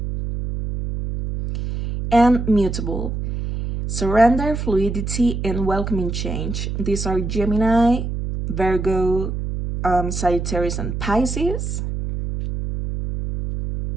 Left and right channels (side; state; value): right; noise; hum, 4 dB below the sound